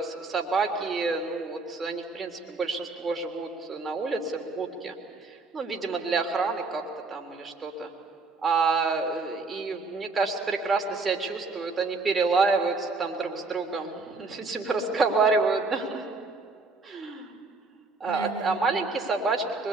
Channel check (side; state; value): left; quieter; 3.7 dB